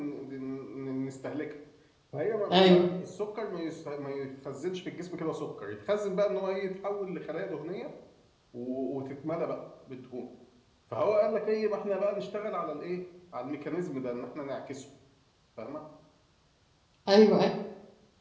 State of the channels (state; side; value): identical; both; correlation 1.00